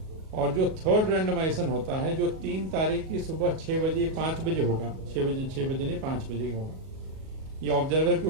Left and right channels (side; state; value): left; late; 37 ms